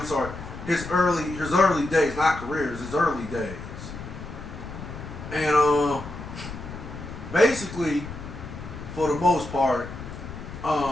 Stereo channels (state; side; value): noise; left; rumble, 11 dB below the sound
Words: sorry, his early days, not careers, his early days. And basically, for the most part,